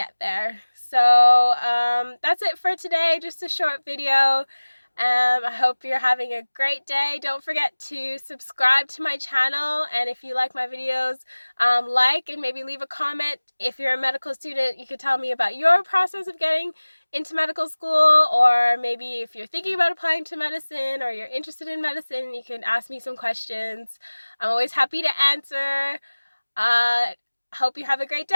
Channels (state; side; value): inverted; both; correlation -1.00